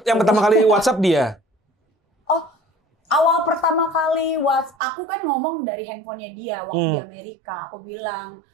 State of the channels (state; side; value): drops out; left; at 4.8 s